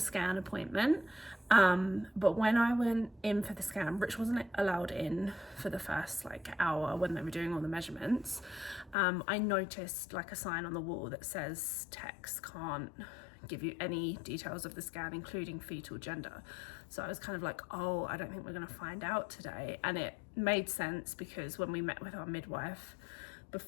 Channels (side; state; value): right; drops out; at 9.0 s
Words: appointment, but when I went in for the scan, Rich wasn't allowed in for the first like hour when they were doing all the measurements. I noticed like a sign on the wall that says techs can't give you any details of the scan, including fetal gender. So I was kind of like, oh, I don't think we're going to find out today. And it made sense because when we met with our midwife